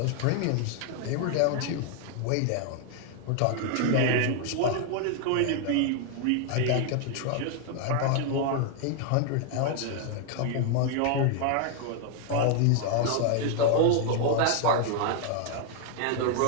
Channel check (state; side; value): different; both; correlation 0.00